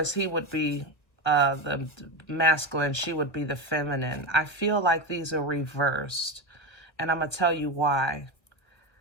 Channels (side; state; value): right; late; 1.3 ms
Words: he would be the masculine, she would be the feminine. I feel like these are reversed, and I'm going to tell you why.